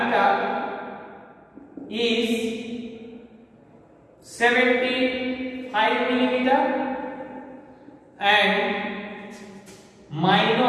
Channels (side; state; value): both; identical; correlation 1.00